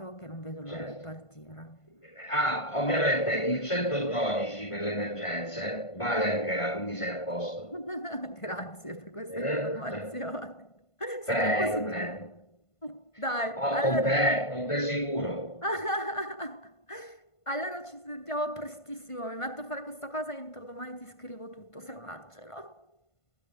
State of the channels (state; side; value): late; right; 1.5 ms